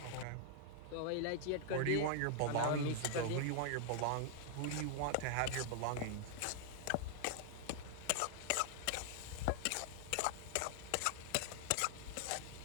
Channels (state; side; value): different; both; correlation -0.01